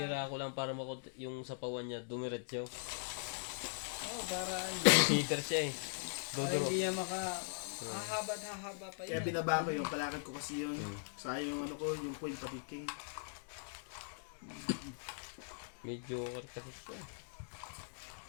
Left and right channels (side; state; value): right; silent; digital silence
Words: ko lang para yung sapawan niya dumiretso. Oo, para ano. Cheater siya eh. Dodoro. Hindi niya mahaba na haba pa Kaya yun. binaba ko yung palakad ko kasi yun. Sayang yung ano ko, yung point pati king. May joker kasi siya eh.